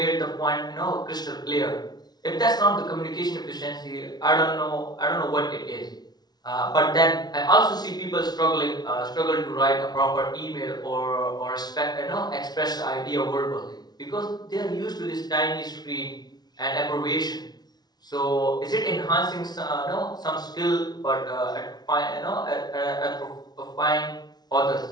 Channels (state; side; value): late; right; 0.19 ms